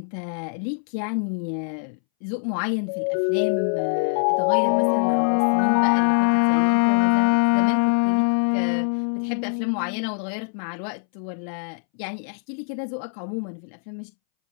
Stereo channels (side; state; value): right; silent; 63 dB below the other